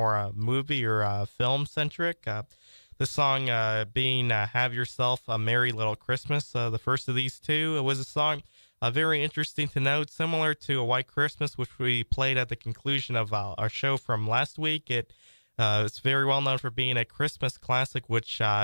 movie or film centric. This song being Have Yourself a Merry Little Christmas, the first of these two. It was a song very interesting to note, similar to A White Christmas, which we played at the conclusion of our show from last week. It's very well known for being a Christmas classic, which,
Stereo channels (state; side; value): inverted; both; correlation -1.00